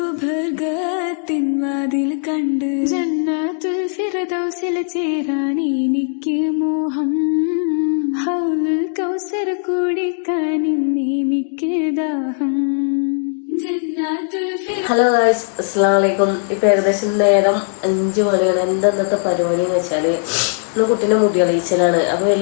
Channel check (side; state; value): right; silent; digital silence